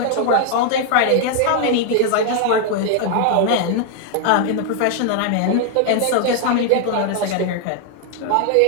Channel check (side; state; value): both; different; correlation 0.00